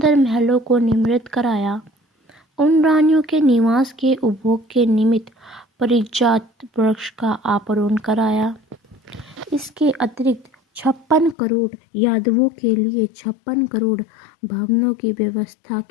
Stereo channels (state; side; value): drops out; right; at 11.4 s